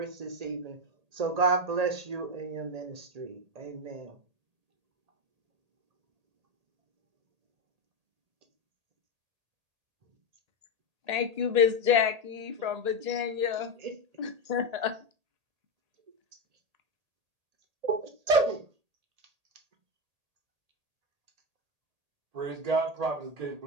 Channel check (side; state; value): left; late; 1.8 ms